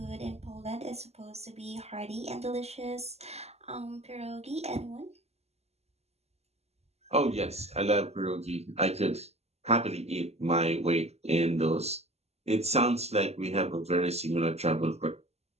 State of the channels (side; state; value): left; late; 0.30 ms